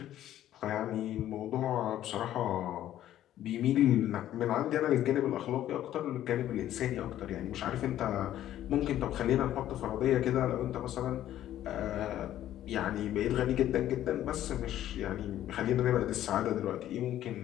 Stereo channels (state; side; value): quieter; right; 12.4 dB